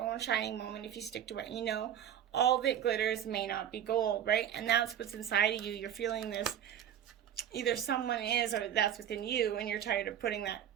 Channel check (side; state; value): left; quieter; 10.0 dB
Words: shining moment if you stick to what you know. All that glitters may not be gold, right? And that's what's inside of you. You're feeling this. Either someone is, or that's within you, and you're tired of putting that